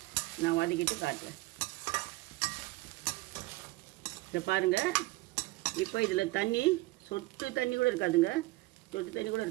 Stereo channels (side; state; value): left; quieter; 20.9 dB